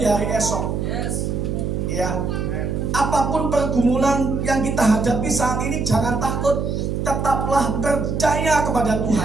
hari esok. Yes. Ya, apapun pergumulan yang kita hadapi saat ini, jangan takut, tetaplah percaya kepada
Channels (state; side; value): noise; right; hum, 1 dB below the sound